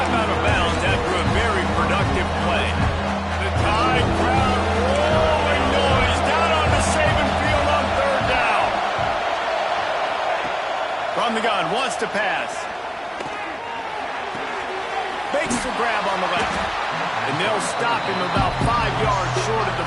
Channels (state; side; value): identical; both; correlation 1.00